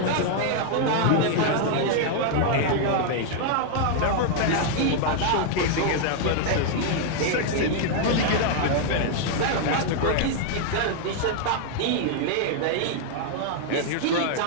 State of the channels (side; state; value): both; different; correlation 0.00